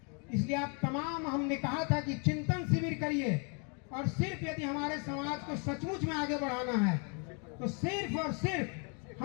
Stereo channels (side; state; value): right; quieter; 36.9 dB